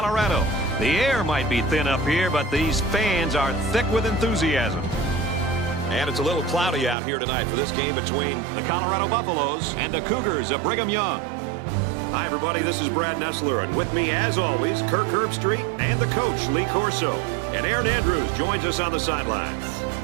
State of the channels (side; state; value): left; drops out; at 7.0 s